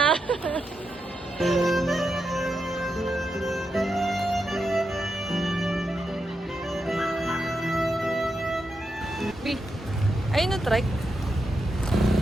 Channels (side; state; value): both; normal; correlation 0.85